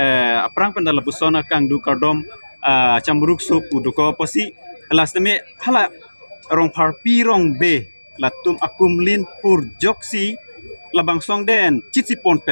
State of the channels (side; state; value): both; inverted; correlation -1.00